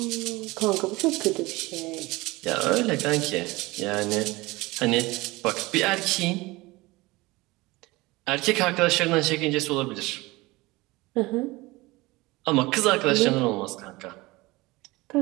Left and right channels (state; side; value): quieter; left; 21.6 dB